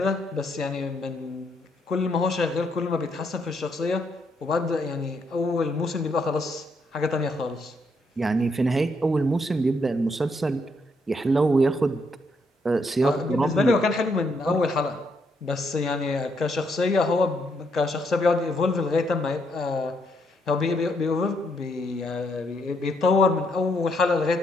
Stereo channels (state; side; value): normal; both; correlation 0.75